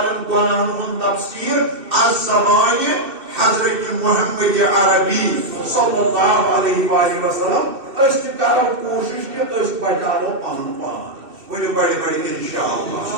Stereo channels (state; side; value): late; left; 2.6 ms